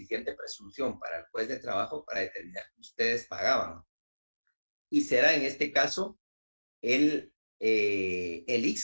presunción para el juez de trabajo para determinar que ustedes pagaban. Y será en este caso el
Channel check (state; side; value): inverted; both; correlation -1.00